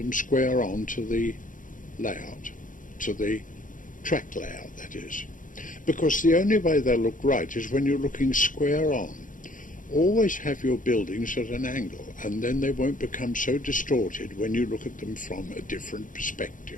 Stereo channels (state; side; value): late; right; 0.38 ms